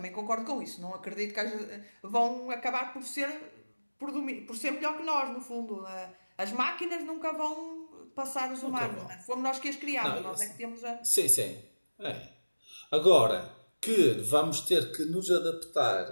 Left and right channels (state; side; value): inverted; both; correlation -1.00